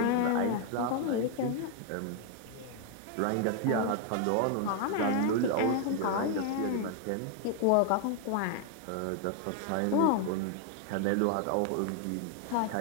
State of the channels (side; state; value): both; different; correlation 0.00